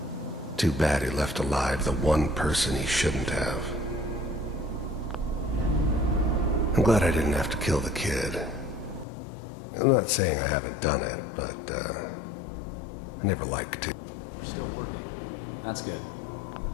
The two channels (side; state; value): right; drops out; at 9.1 s